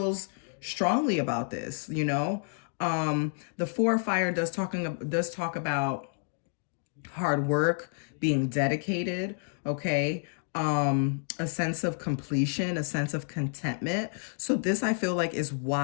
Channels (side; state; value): right; silent; 58 dB below the other